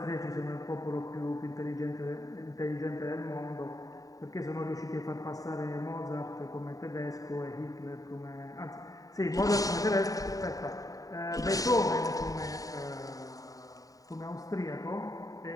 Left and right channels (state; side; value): late; right; 0.17 ms